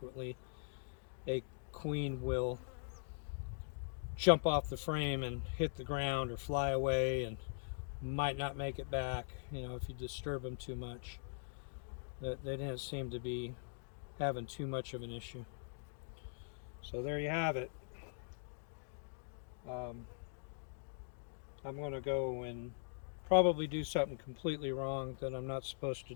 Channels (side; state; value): right; silent; digital silence